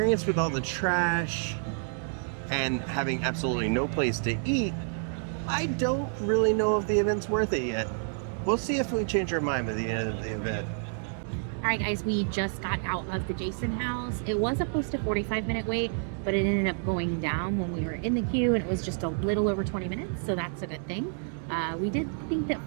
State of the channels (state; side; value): silent; left; 59 dB below the other